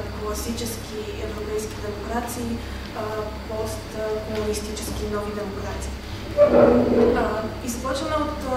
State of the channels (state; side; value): identical; both; correlation 1.00